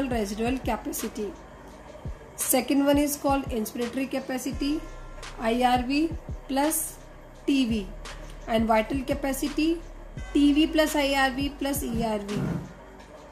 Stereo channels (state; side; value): identical; both; correlation 1.00